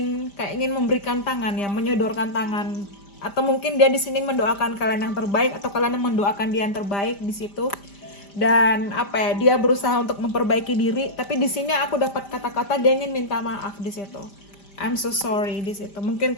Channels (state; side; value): late; right; 5.0 ms